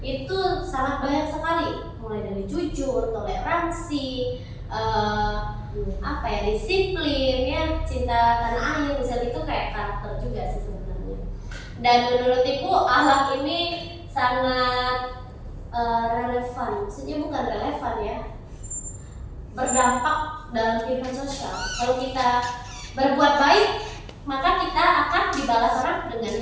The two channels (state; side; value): identical; both; correlation 1.00